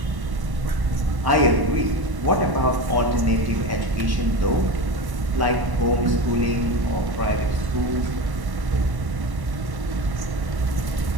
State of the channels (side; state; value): left; late; 1.1 ms